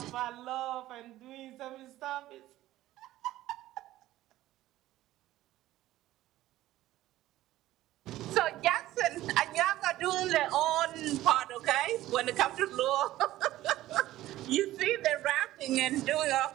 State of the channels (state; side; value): quieter; left; 15.2 dB